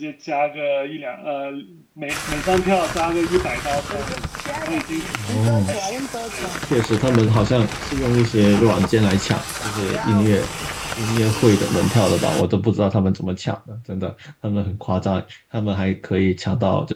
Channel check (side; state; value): both; identical; correlation 1.00